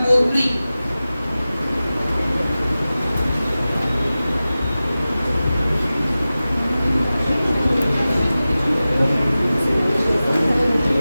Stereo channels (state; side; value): inverted; both; correlation -0.96